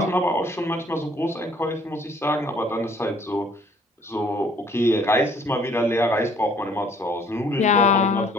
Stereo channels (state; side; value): normal; both; correlation 0.59